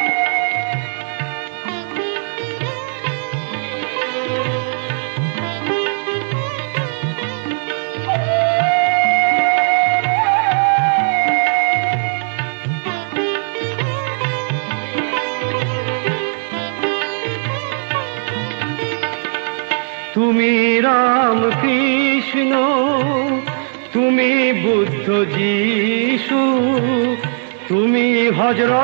তুমি রাম কৃষ্ণ, তুমি বুদ্ধ যিশু, তুমি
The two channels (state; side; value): silent; left; digital silence